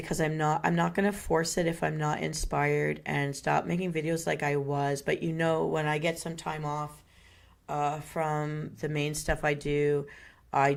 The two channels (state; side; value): identical; both; correlation 1.00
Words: because I'm not going to force it if I'm not inspired, and stop making videos like I was. But when I get some time off from the main stuff I do